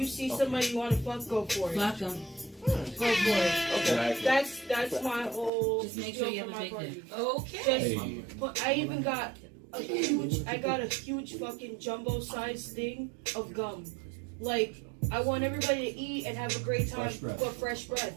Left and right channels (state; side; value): drops out; left; at 5.5 s